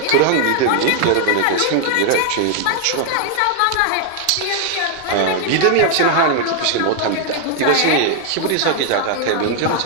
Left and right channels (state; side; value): different; both; correlation 0.00